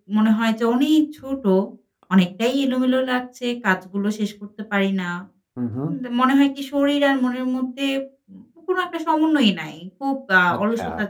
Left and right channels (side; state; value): both; identical; correlation 1.00